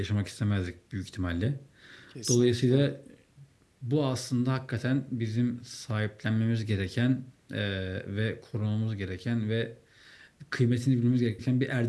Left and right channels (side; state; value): both; identical; correlation 1.00